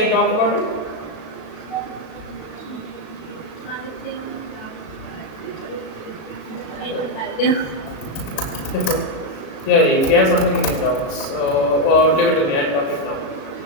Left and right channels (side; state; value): right; late; 37 ms